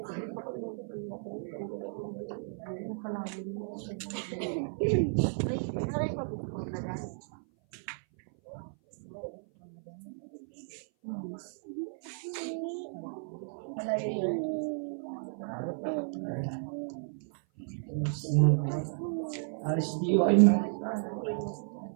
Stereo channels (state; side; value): silent; left; 55 dB below the other